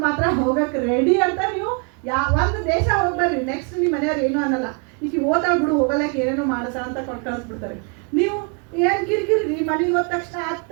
ಮಾತ್ರ ಹೋಗಕ್ಕೆ ರೆಡಿ ಅಂತ. ನೀವು ಒಂದು ದೇಶ ಹೋಗ್ಬರ್ರಿ, ನೆಕ್ಸ್ಟ್ ನಿಮ್ಮ ಮನೆಯವ್ರು ಏನು ಅನ್ನಲ್ಲ, ಈಗ ಓದ್ತಾ ಬಿಡು ಹೋಗಲಕ್ಕೆ ಏನೇನೋ ಮಾಡಸ ಅಂತ ಕೊಟ್ಟು ಕಳಿಸ್ಬಿಡ್ತಾರೆ. ನೀವು ಏನ್ ಕಿರಿಕಿರಿ, ಮನೆಗೆ ಹೋದ ತಕ್ಷಣ ಅದು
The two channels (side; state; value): left; quieter; 36.3 dB